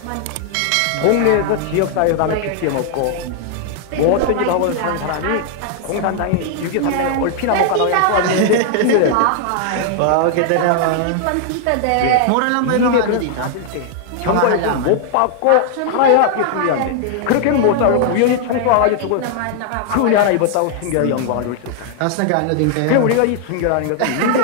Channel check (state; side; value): different; both; correlation 0.00